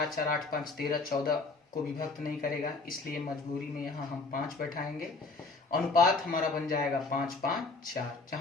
4 8 5 13, 14 को विभक्त नहीं करेगा, इसलिए मजबूरी में यहाँ हम 5 बैठाएंगे। अनुपात हमारा बन जाएगा 5 5 4,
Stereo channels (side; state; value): right; quieter; 3.8 dB